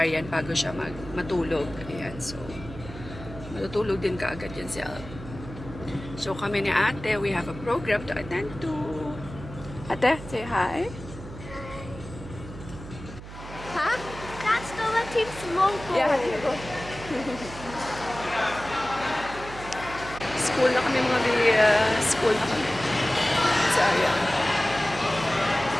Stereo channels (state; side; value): noise; right; hum, 13 dB below the sound